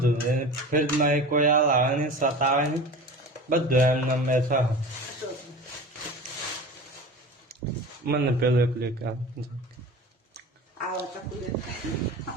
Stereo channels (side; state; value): both; normal; correlation 0.35